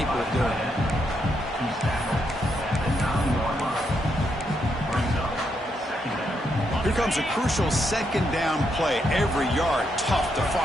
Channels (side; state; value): both; normal; correlation 0.79